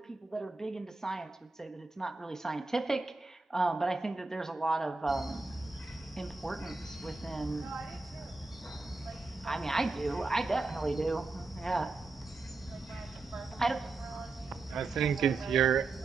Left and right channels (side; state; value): left; quieter; 3.7 dB